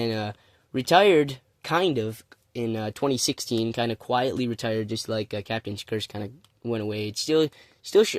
retired kind of in 2016, kind of quietly retired, just like Captain's Curse kind of went away. It's still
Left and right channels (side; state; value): both; identical; correlation 1.00